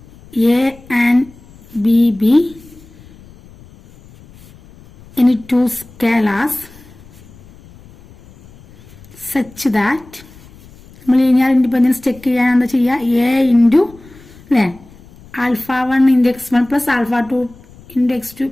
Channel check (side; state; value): left; noise; rumble, 23 dB below the sound